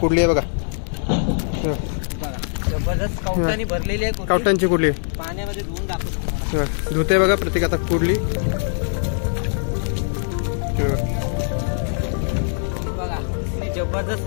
आहे बघा. जबरदस्त कवटांनी भरलेली आहे. कवटांची कुर्ली पाण्यामध्ये धुवून दाखवतो. धुते बघा प्रत्येक आता कुर्ली. बघा जबरदस्त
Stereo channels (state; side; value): silent; right; digital silence